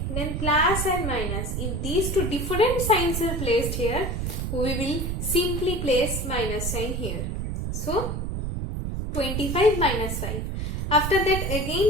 then plus and minus. If these two different signs are placed here, we will simply place minus sign here. So 25 minus 5. After that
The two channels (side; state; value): right; noise; rumble, 2 dB below the sound